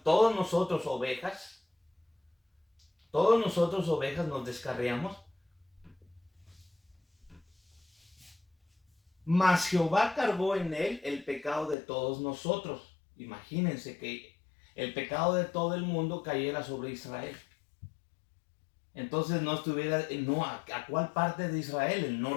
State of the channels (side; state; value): right; drops out; at 11.8 s